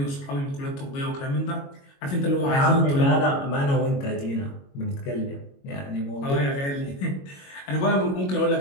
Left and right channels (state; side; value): late; right; 22 ms